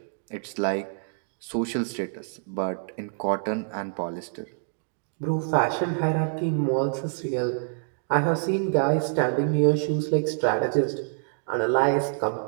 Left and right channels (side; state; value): left; silent; digital silence